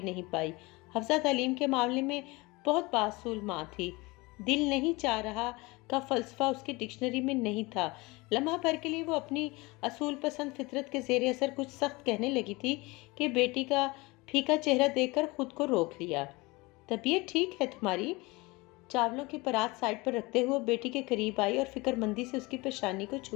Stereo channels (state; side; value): quieter; right; 23.9 dB